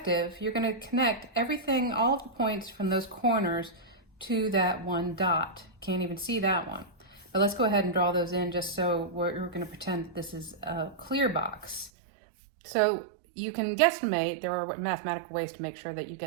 you're going to connect everything, all of the points from those corners to that one dot. Can't even see that one. But let's go ahead and draw those in just so we're going to pretend that this is a clear box. So you can guesstimate, there are mathematical ways to make sure that you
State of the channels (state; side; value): drops out; left; at 11.9 s